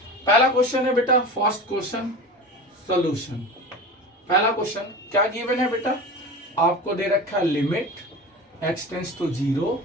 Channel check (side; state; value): both; normal; correlation 0.31